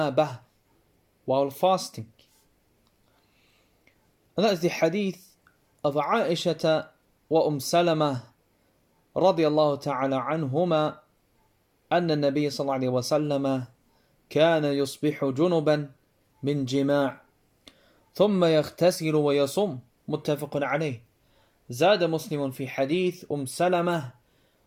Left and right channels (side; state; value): both; identical; correlation 1.00